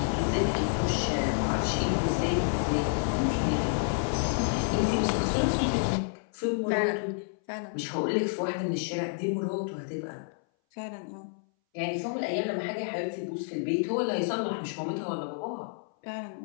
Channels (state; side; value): silent; right; 58 dB below the other